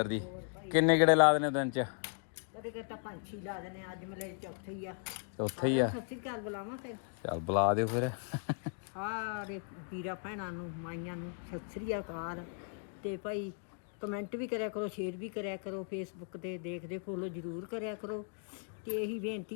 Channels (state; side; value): silent; right; 53 dB below the other